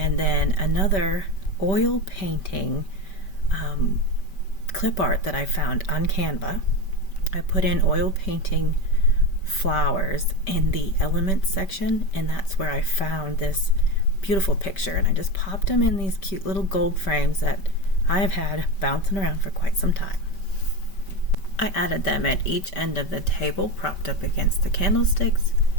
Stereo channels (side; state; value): right; late; 5.2 ms